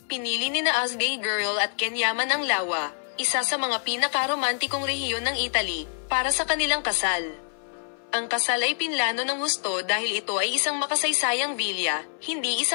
Pinili nina Ozgay Girl at Ken Yaman ang Lawa, isa sa mga pinaka-romantikong rehiyon ng Italy, para sa kanilang kasal. Ang kasal ay pinlano ng husto dahil ito ay isang makasaysayang villa, hindi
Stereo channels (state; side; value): silent; right; 61 dB below the other